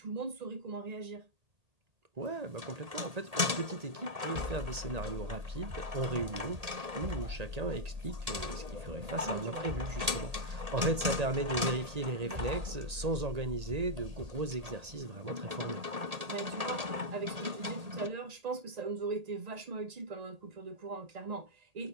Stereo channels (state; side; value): late; left; 1.8 ms